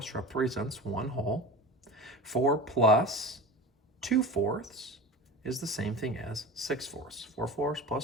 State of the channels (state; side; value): normal; both; correlation 0.31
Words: represents 1 whole. 4 plus 2/4 is the same thing as 6/4. 4/4